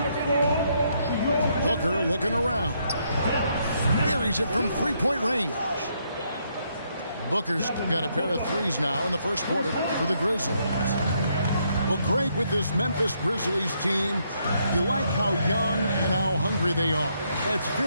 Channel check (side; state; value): both; inverted; correlation -0.74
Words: the floor. Booker looking around. Buries it from 3-point range. Booker's got a pair of threes now in the first quarter for the Grizzlies. Well, great with this Memphis Grizzlies team. You like how young and how hungry they are. It's